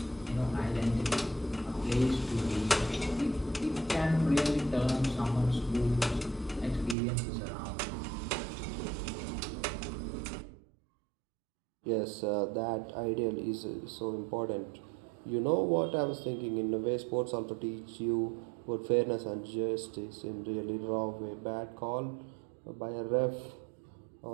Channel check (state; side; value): drops out; left; at 7.0 s